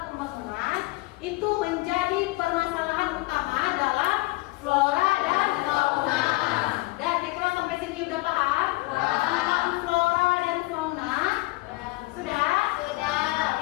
pembangunan itu menjadi permasalahan utama dalam flora dan fauna. Dan kira-kira sampai sini udah paham? Tentang flora dan fauna? Sudah?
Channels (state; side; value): quieter; right; 22.3 dB